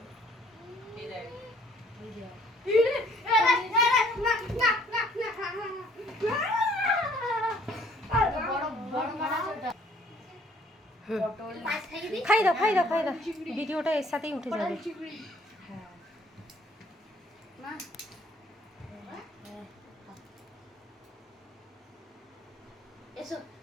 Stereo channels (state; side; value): normal; both; correlation 0.60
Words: খাই দাও খাই দাও খাই দাও, ভিডিওটা এর সাথেই উঠে যাবে। এসো